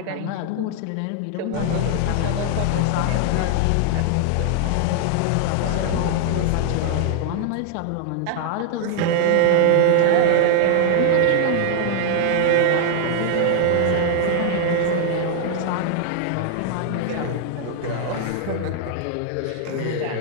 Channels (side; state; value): both; different; correlation -0.01